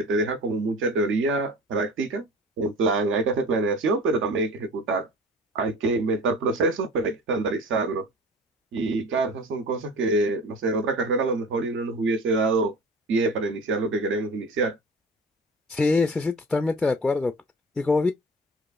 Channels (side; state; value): both; normal; correlation 0.39